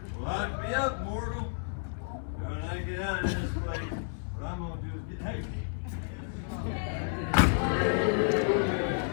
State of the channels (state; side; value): silent; right; digital silence